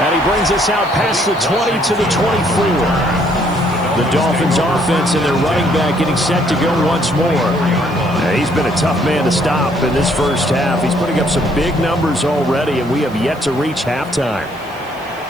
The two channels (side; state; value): right; noise; hiss, 26 dB below the sound